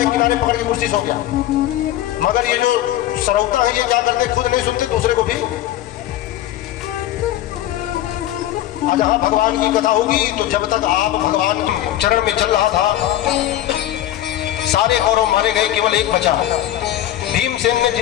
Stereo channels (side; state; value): right; quieter; 13.3 dB